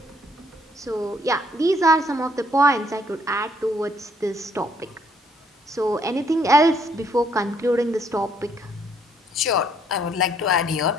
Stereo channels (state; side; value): normal; both; correlation 0.67